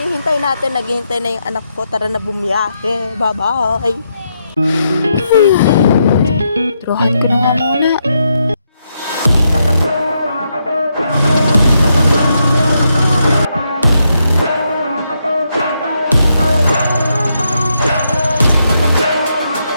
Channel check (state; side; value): inverted; both; correlation -0.81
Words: natin? Naghihintay na yung anak ko. Tara na bumiyahe. Bye-bye. Turuhan ko na nga muna.